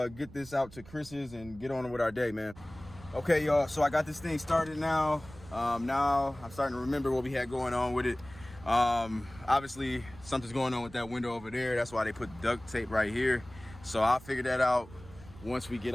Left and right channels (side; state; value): right; noise; rumble, 19 dB below the sound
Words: get this out to Chris's and get on with our day, man. Okay, y'all, so I got this thing started now. Now I'm starting to remember what we had going on with it. Obviously, something's going on with that window over there. That's why they put duct tape right here. So I'll figure that out once we get